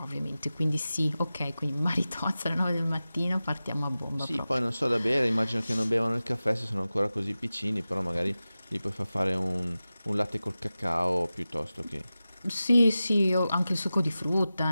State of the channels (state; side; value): inverted; both; correlation -0.95